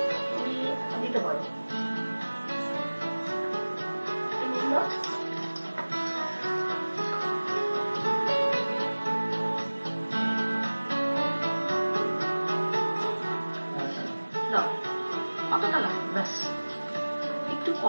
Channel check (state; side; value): inverted; both; correlation -1.00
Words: তুমি দিতে পারো। নুন দাও। দাও, অতটা লাগবে, ব্যাস। একটু